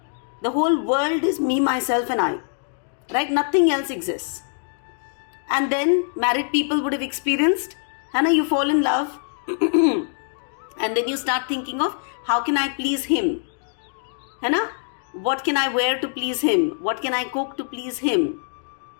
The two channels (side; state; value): right; silent; digital silence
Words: The whole world is me, myself and I. Right? Nothing else exists. And then married people would have experienced, you fall in love. And then you start thinking of how can I please him? What can I wear to please him? What can I cook to please him?